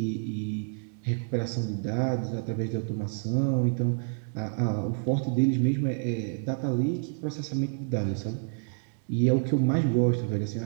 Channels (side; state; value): left; silent; digital silence